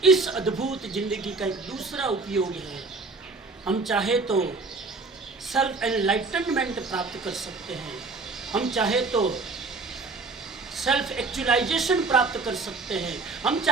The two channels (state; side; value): quieter; left; 3.8 dB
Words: इस अद्भुत जिंदगी का एक दूसरा उपयोग है, हम चाहे तो सेल्फ एनलाइटनमेंट प्राप्त कर सकते हैं, हम चाहे तो सेल्फ एक्चुअलाइजेशन प्राप्त कर सकते हैं, हम